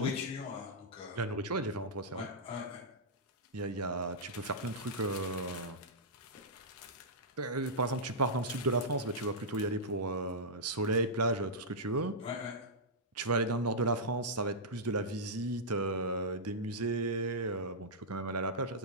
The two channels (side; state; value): both; normal; correlation -0.12